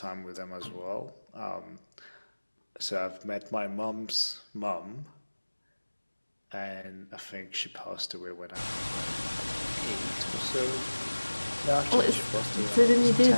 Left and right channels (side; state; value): both; inverted; correlation -1.00